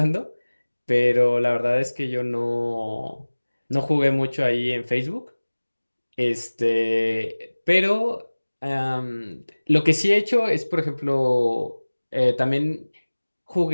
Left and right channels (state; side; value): inverted; both; correlation -1.00